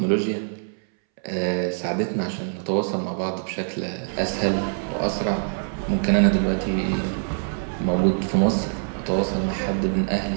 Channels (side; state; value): left; silent; 62 dB below the other